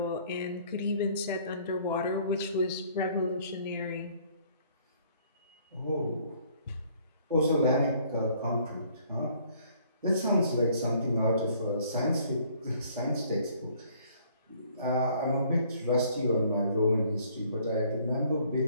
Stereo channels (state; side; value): inverted; both; correlation -0.60